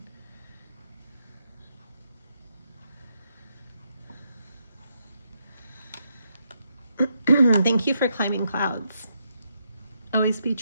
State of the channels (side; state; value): both; inverted; correlation -0.80